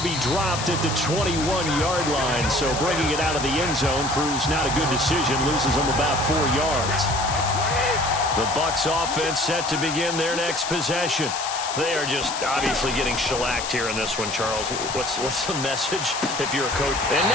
be dropped at the 21-yard line. So bringing it out of the end zone proves not a good decision. Loses him about 4 yards. The Bucs offense set to begin their next possession. They are just obviously getting shellacked here in this one, Charles. What's the message if you're a coach? And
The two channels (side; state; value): left; noise; hiss, 6 dB below the sound